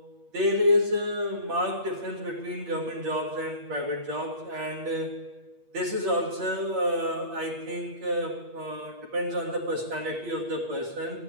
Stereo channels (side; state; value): left; late; 8.5 ms